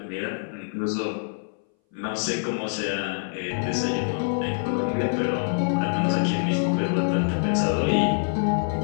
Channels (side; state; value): right; silent; 60 dB below the other